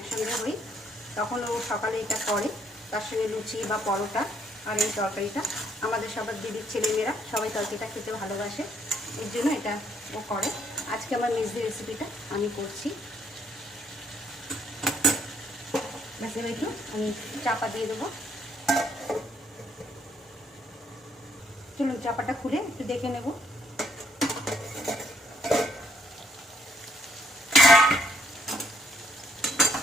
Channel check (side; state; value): both; normal; correlation 0.69